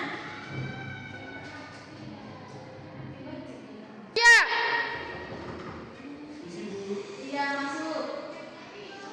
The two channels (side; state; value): both; identical; correlation 1.00